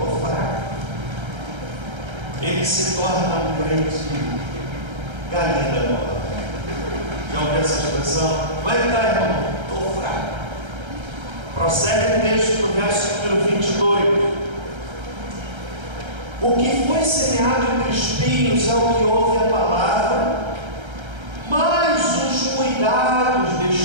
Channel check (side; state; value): left; late; 1.3 ms